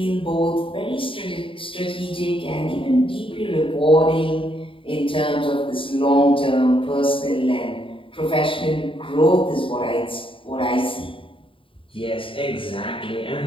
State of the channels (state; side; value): late; right; 0.25 ms